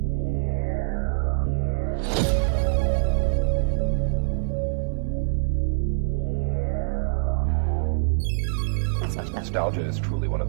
Nostalgia is truly one of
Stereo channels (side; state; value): left; silent; digital silence